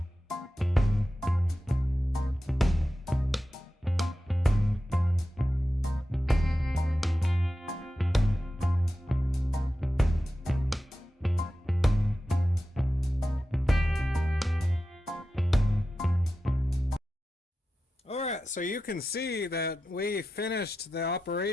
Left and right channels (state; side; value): normal; both; correlation 0.92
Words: Alright, so you can see that we finished the